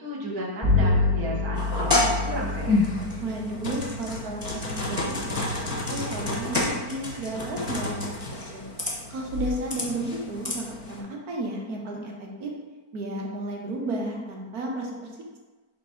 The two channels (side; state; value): left; late; 4.4 ms